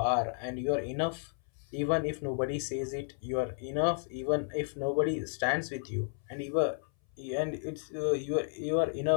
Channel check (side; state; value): right; silent; 56 dB below the other